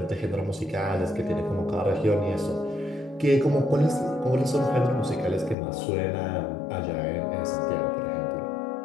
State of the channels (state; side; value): drops out; right; at 5.6 s